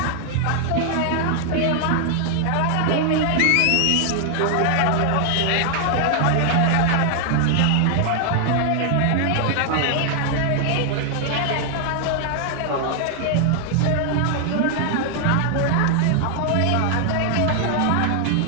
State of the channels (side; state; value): both; different; correlation 0.00